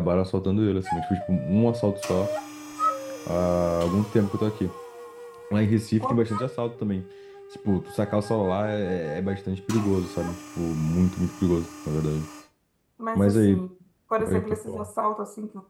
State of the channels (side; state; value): both; identical; correlation 1.00